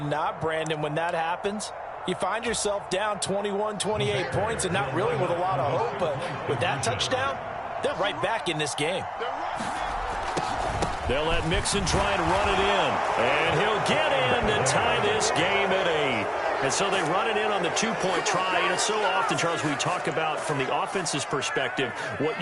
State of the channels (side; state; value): both; identical; correlation 1.00